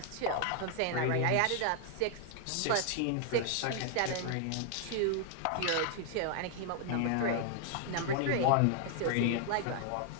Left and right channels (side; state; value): both; different; correlation 0.00